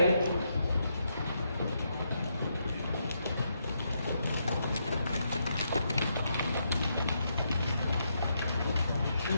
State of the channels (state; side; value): inverted; both; correlation -0.80